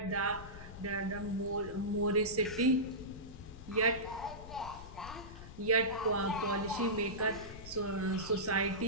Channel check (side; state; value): left; noise; rumble, 13 dB below the sound